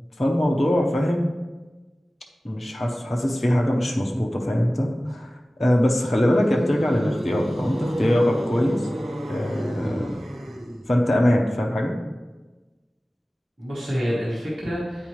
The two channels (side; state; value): both; normal; correlation 0.97